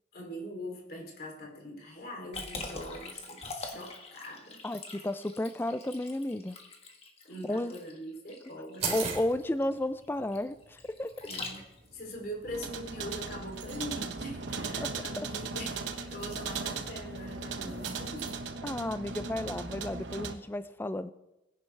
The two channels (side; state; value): both; normal; correlation 0.61